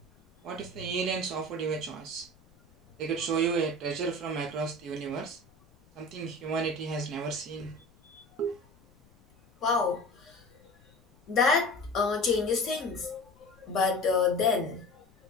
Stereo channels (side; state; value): left; noise; rumble, 29 dB below the sound